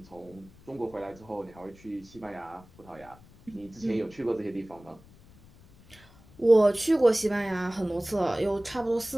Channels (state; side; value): noise; left; rumble, 24 dB below the sound